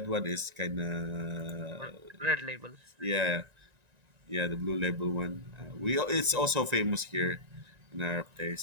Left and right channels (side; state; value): left; late; 1.9 ms